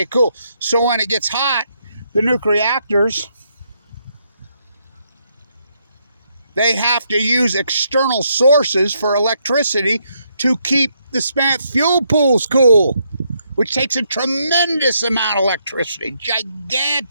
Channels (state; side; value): inverted; both; correlation -0.76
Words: cool. So when it gets hot, the nuclear reactors, they have to use external sources for electricity to keep the spent fuel pools cool, which takes a tremendous amount of electricity,